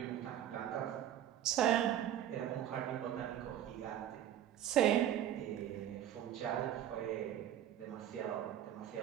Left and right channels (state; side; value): quieter; left; 11.1 dB